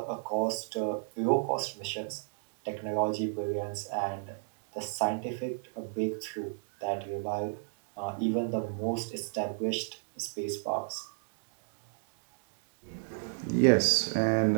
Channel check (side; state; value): left; silent; digital silence